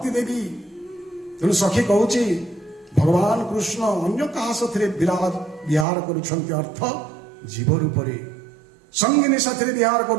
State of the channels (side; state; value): left; drops out; at 5.9 s